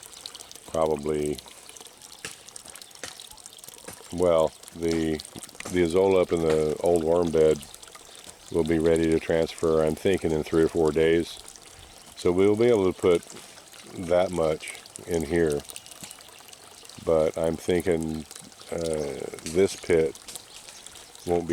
probably, well, the Azolla up in the old worm bed will be ready to transfer, I'm thinking, in 3 or 4 days. So we'll be able to put that much in here. But I'm thinking this pit won't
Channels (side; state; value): both; identical; correlation 1.00